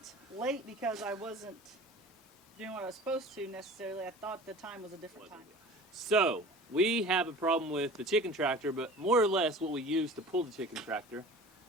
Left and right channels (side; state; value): both; normal; correlation 0.41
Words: late because I wasn't doing what I was supposed to necessarily. I thought the time was a different time. So, we have a problem with the chicken tractor, but more or less what we use to pull the chicken tractor.